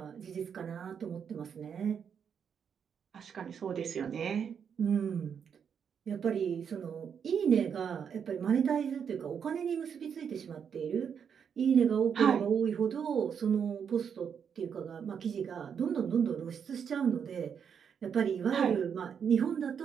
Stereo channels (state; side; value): quieter; left; 7.3 dB